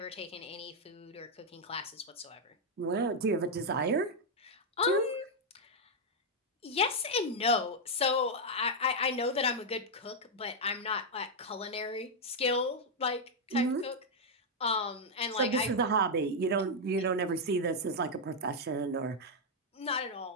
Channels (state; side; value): normal; both; correlation -0.01